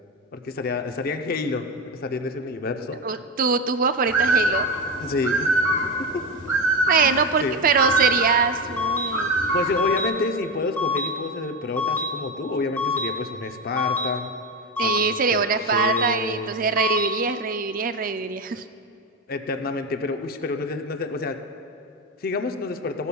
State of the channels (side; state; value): both; normal; correlation 0.17